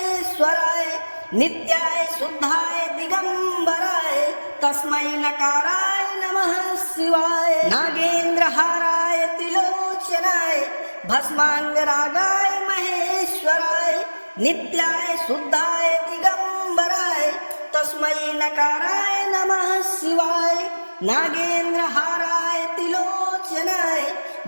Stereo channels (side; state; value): both; inverted; correlation -1.00